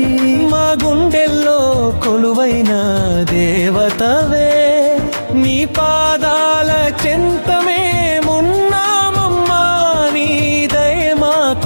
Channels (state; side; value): inverted; both; correlation -1.00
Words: మా గుండెల్లో కొలువైన దేవతవే నీ పాదాల చెంతమే మున్నామమ్మా నీ దయ